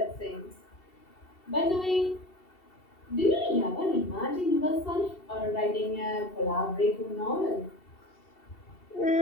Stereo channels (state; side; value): late; right; 2.7 ms